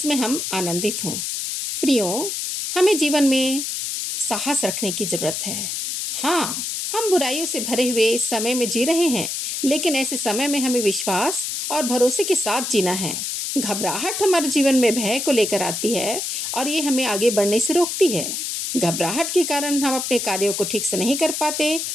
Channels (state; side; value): noise; left; hiss, 3 dB below the sound